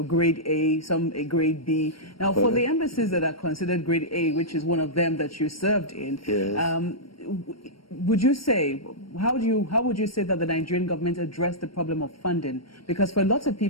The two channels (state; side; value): late; right; 0.74 ms